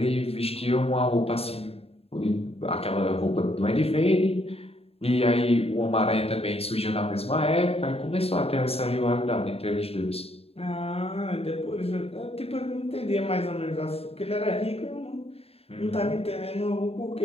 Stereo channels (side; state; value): right; late; 0.29 ms